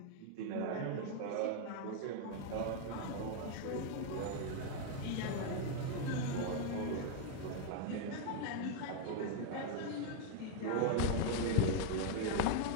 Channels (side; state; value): both; different; correlation 0.00